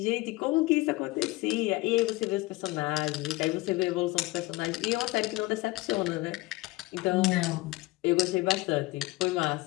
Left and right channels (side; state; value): right; quieter; 20.6 dB